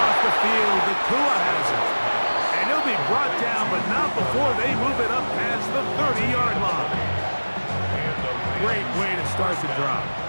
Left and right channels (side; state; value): both; inverted; correlation -1.00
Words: the field, the Tua has it. And he'll be brought down, but not before they move it up past the 30-yard line. Great way to start the drive.